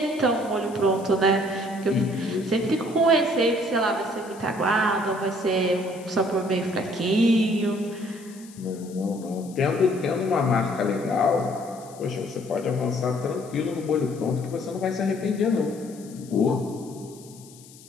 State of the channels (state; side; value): noise; left; hiss, 22 dB below the sound